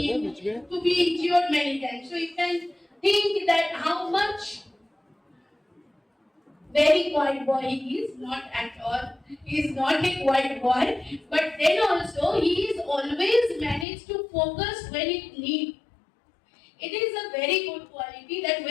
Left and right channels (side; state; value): right; drops out; at 13.9 s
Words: to be injured many times. So you can think that how much very quiet boy he is, not at all. He is not a quiet boy, but then also he is always managed to focus when it needs. It is a very good quality that